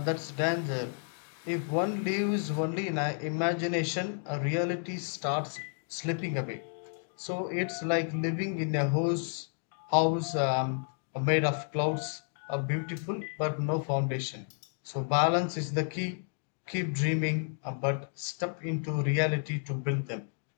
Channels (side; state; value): right; silent; 57 dB below the other